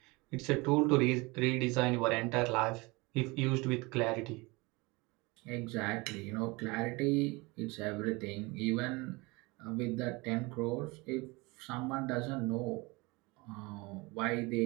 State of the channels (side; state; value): left; quieter; 24.9 dB